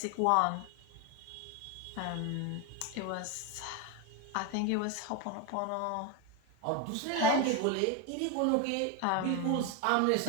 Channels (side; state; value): both; different; correlation 0.02